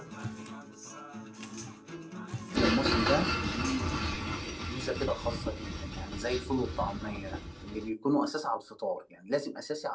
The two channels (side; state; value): both; identical; correlation 1.00